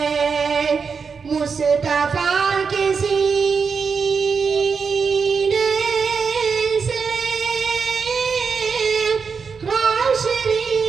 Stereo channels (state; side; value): quieter; left; 5.5 dB